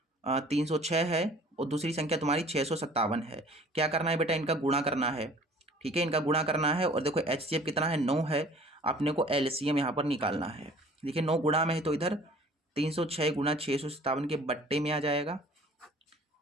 306 है और दूसरी संख्या तुम्हारी 657 है। क्या करना है बेटा, इनका गुणा करना है। ठीक है, इनका गुणा करना है, और देखो HCF कितना है 9 है, अपने को LCM यहाँ पर निकालना है। देखिए 9 गुणा में है तो इधर 306 गुणा 657 के बट्टे में आ जाएगा,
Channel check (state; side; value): normal; both; correlation 0.50